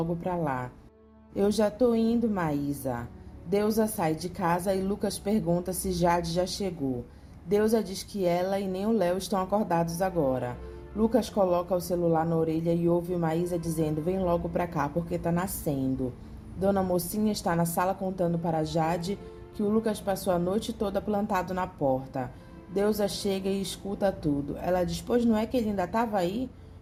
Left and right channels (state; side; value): identical; both; correlation 1.00